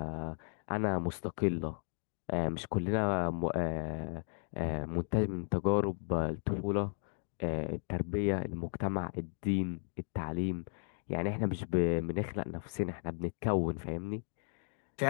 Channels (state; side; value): silent; right; digital silence